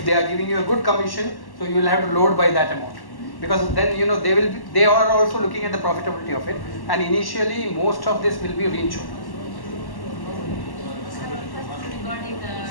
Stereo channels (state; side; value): late; right; 1.1 ms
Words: they are giving you a good commission, so you will have to load by that amount. Because then they are also looking at the profitability of it, and initially most of this will be reinsured. Regarding the